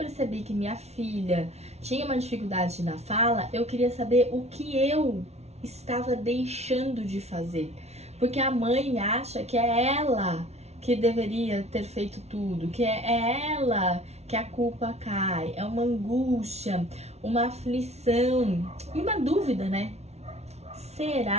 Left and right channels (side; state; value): left; late; 0.31 ms